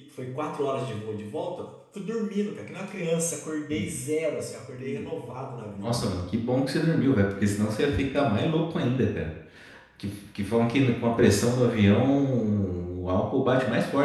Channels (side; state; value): both; identical; correlation 1.00